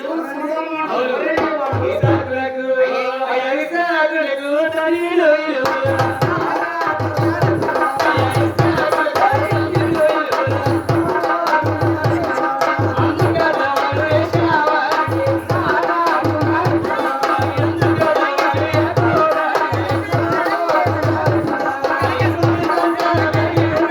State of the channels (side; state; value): both; identical; correlation 1.00